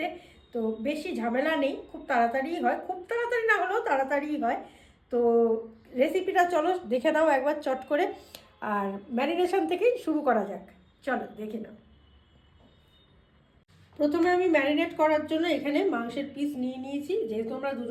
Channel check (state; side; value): identical; both; correlation 1.00